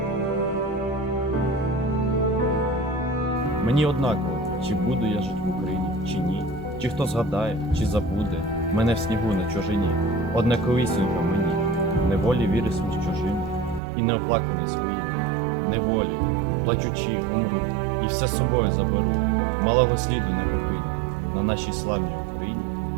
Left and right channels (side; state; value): left; drops out; at 13.8 s